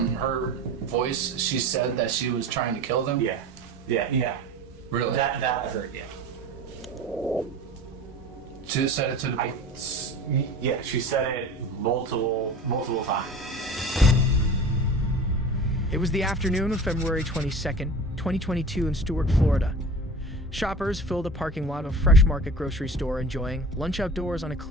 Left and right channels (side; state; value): both; normal; correlation 0.37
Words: her voice, she said that she was trying to kill them? Yeah. Really? That I heard, yeah. She just said it to the... Yeah, she said it multiple times. It was the afternoon of February 22nd, 2022 in Stuart, Florida. Shoppers filled a parking lot of a Fresh Market grocery store enjoying lunch outdoors on a